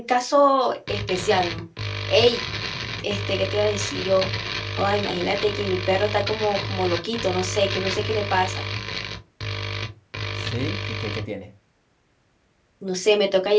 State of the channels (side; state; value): both; identical; correlation 1.00